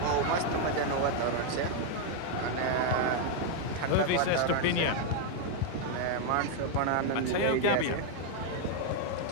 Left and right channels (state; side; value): different; both; correlation 0.01